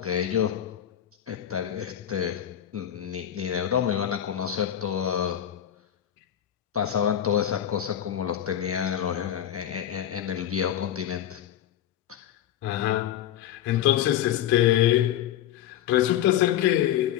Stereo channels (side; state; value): right; quieter; 10.9 dB